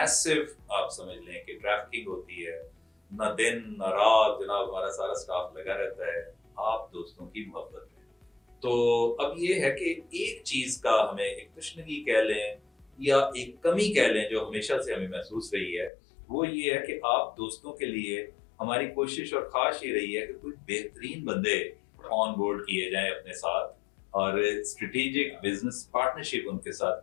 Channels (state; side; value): drops out; right; at 15.9 s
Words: आप समझ लें कि ट्रैफिकिंग होती है। ना दिन ना रात जनाब हमारा सारा स्टाफ लगा रहता है आप दोस्तों की मोहब्बत में। तो अब ये है कि एक चीज का हमें एक तशनगी कह लें या एक कमी कह लें जो हमेशा से हमें महसूस रही है, वो ये है कि आप दोस्तों के लिए हमारी कोशिश और ख्वाहिश ये रही है कि कुछ बेहतरीन बंदे ऑन बोर्ड किए जाएं अपने साथ और स्ट्रेटेजिक बिजनेस पार्टनरशिप उनके